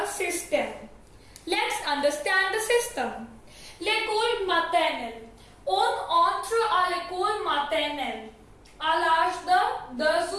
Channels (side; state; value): both; identical; correlation 1.00